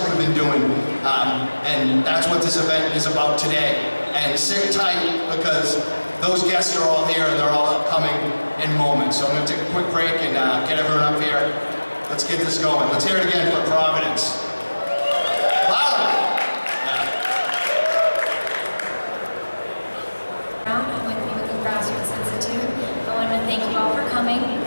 we've been doing. And that's what this event is about today. And sit tight, because those guests are all here and they're all upcoming in moments. So I'm going to take a quick break and get everyone up here. Let's get this going. Let's hear it again for Providence. Louder! I'm with the New England Grassroots Institute. I want to thank you all for coming.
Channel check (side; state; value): both; inverted; correlation -1.00